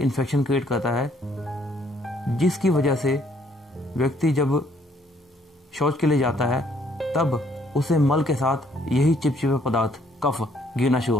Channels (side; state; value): both; normal; correlation 0.66